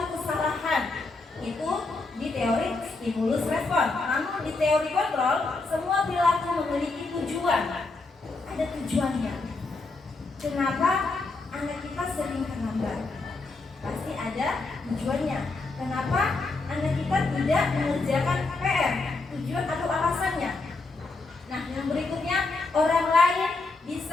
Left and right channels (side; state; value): right; quieter; 3.6 dB